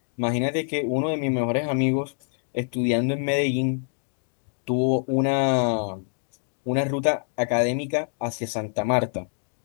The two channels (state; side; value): silent; right; 57 dB below the other